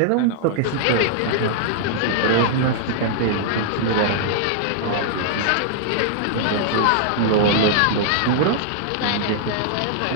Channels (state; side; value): different; both; correlation -0.01